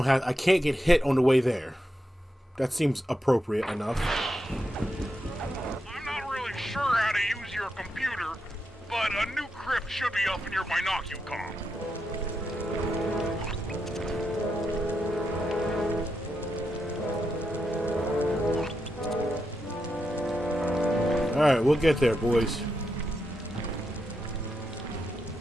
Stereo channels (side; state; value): both; normal; correlation 0.85